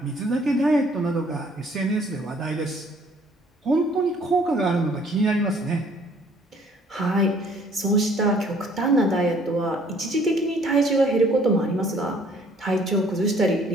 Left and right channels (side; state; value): both; normal; correlation 0.59